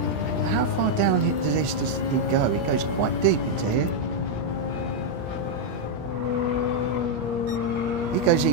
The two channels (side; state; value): left; late; 17 ms